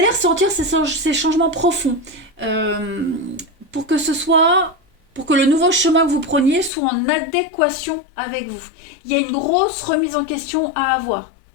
ressentir ces changements profonds pour que pour que le nouveau chemin que vous preniez soit en adéquation avec vous. Il y a une grosse remise en question à avoir.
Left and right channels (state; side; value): drops out; right; at 6.7 s